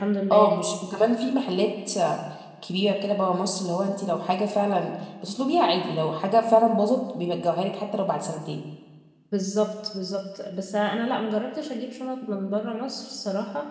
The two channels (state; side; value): identical; both; correlation 1.00